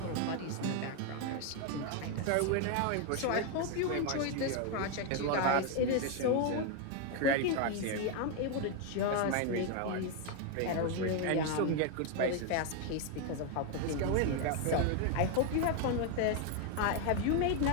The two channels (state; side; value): different; both; correlation 0.01